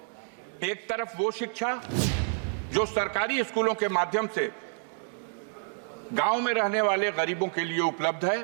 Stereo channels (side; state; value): left; silent; 57 dB below the other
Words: एक तरफ वो शिक्षा जो सरकारी स्कूलों के माध्यम से गांव में रहने वाले गरीबों के लिए उपलब्ध है,